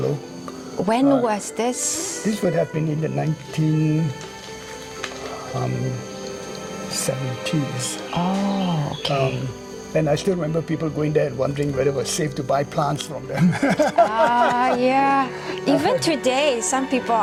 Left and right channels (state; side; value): identical; both; correlation 1.00